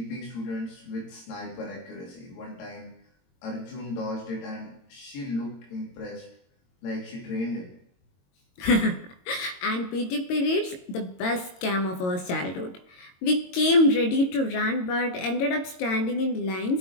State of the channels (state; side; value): late; right; 22 ms